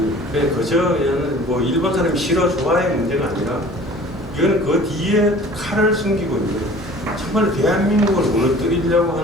그냥 그저 그냥 뭐 일본 사람이 싫어 좋아의 문제가 아니라 이거는 그 뒤에 칼을 숨기고 있는 정말 대한민국을 무너뜨리려고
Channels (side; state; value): both; normal; correlation 0.47